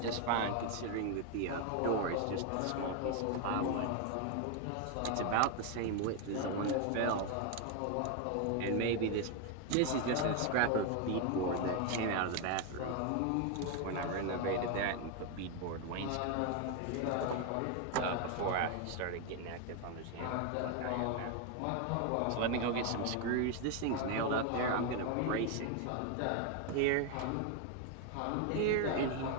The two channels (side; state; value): both; different; correlation 0.01